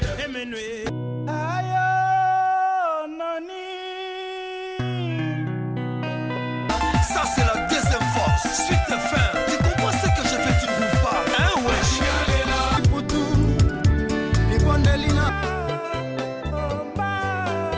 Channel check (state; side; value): identical; both; correlation 1.00